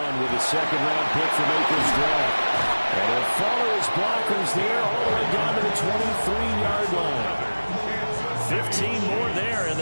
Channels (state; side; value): inverted; both; correlation -1.00